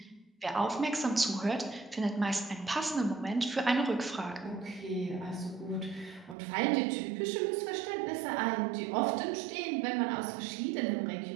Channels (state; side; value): drops out; left; at 6.4 s